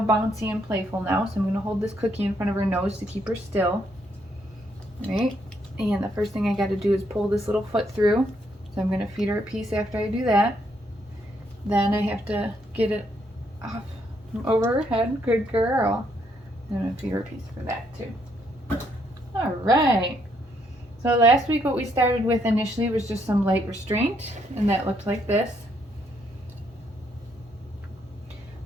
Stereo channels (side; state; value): both; normal; correlation 0.73